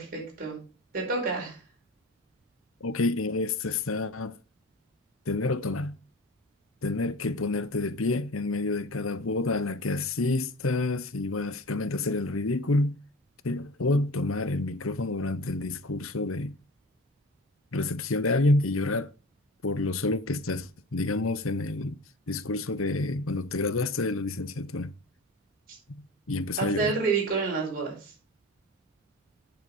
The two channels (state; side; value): normal; both; correlation 0.36